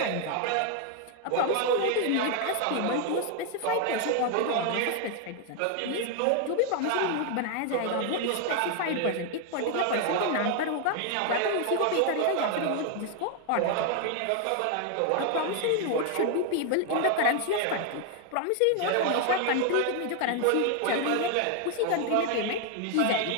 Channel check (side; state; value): both; different; correlation 0.00